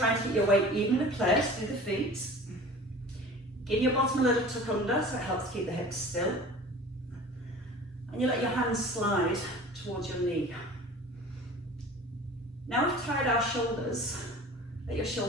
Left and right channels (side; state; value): both; normal; correlation 0.41